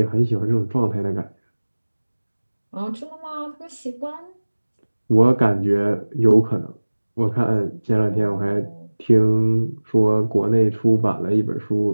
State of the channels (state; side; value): inverted; both; correlation -1.00